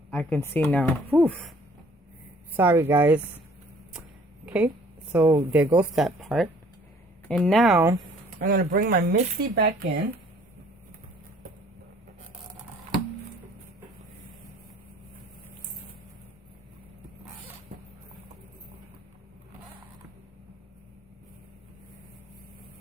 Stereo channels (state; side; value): normal; both; correlation 0.56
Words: I can see now. Whew. Sorry, guys. Okay, so there goes that part. And now I'm going to bring my Misty back in.